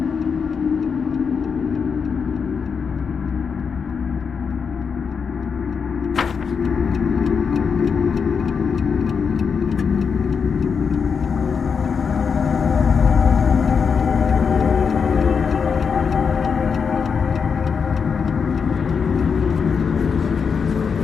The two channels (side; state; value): right; quieter; 6.0 dB